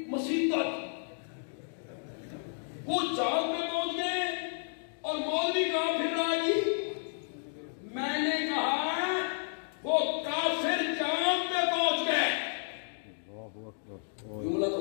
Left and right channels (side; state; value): right; silent; digital silence